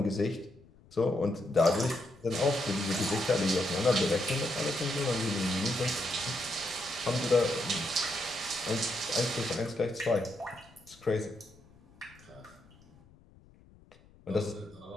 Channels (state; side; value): noise; left; rumble, 26 dB below the sound